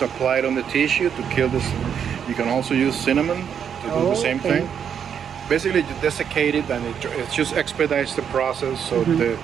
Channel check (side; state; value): left; quieter; 7.9 dB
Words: apply it on the tissue to kill this. You can also use cinnamon to do the same thing. Basically, you desiccate it, and it just expedites the process. So the